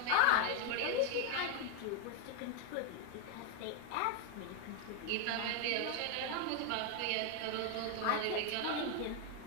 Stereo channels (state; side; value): different; both; correlation 0.01